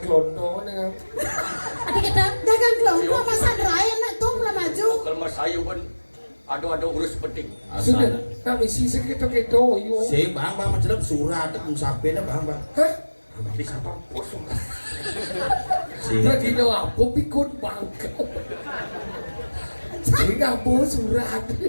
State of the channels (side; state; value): both; inverted; correlation -1.00